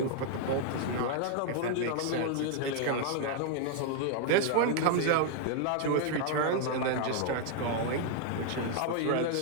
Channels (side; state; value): both; different; correlation 0.00